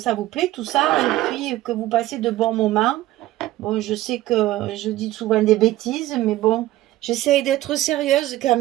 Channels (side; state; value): left; quieter; 15.7 dB